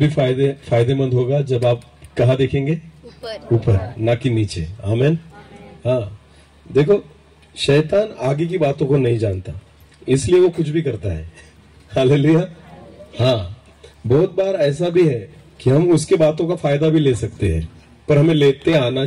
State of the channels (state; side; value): identical; both; correlation 1.00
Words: फायदेमंद होगा जब आप कहाँ देखेंगे? ऊपर, ना कि नीचे। आमेन। हाँ, देखो शैतान आगे की बातों को नहीं जानता, इसलिए वो कुछ भी करता है। हालेलुया। हाँ, बहुत बार ऐसा भी है कि हम उसके बातों का फायदा भी ले सकते हैं, पर हमें लेते आना